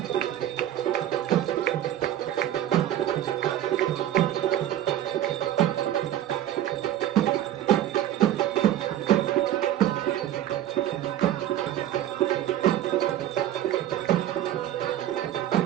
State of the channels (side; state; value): left; quieter; 12.2 dB